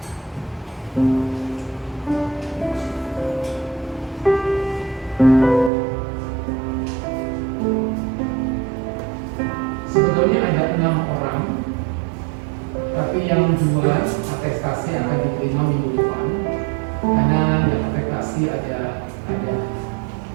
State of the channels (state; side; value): drops out; left; at 5.7 s